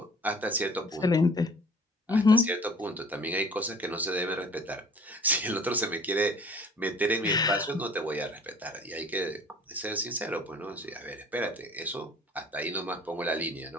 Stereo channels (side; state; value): both; normal; correlation 0.49